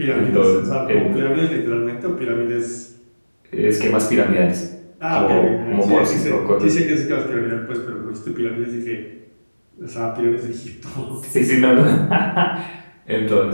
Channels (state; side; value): inverted; both; correlation -1.00